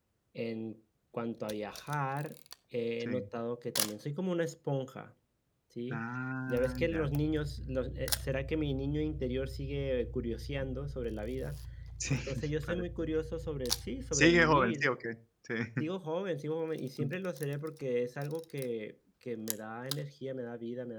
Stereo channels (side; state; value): both; identical; correlation 1.00